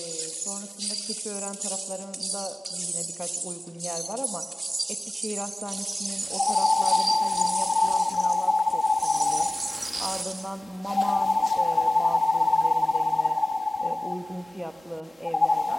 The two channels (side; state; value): both; normal; correlation 0.97